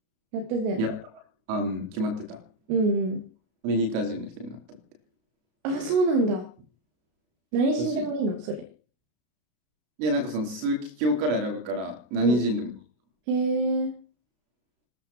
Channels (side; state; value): left; late; 33 ms